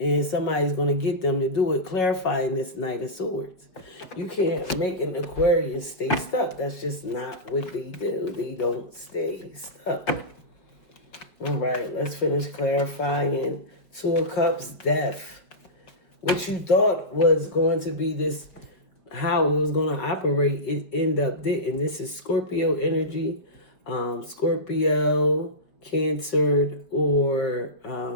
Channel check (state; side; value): late; right; 5.3 ms